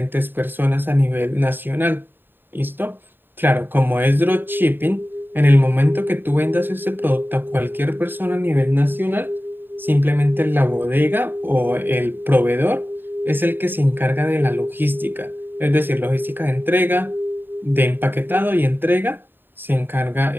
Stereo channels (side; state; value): left; late; 0.095 ms